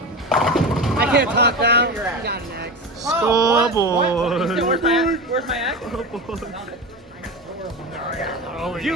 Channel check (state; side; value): normal; both; correlation 0.24